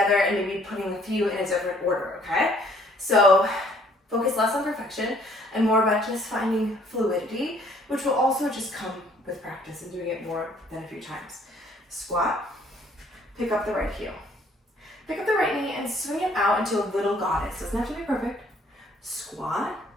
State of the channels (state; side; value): normal; both; correlation 0.61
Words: and maybe putting a few in a different order, okay? So focus less on perfection and more about just finding fluidity, which will also just come with practice and doing it more than a few times. Squat, pick up the right heel. Pick up the right knee and swing it out into a little goddess. Doesn't have to be perfect. Squat,